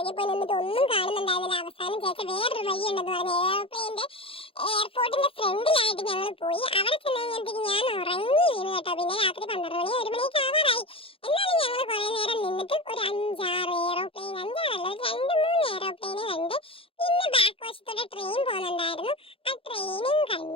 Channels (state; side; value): late; right; 0.27 ms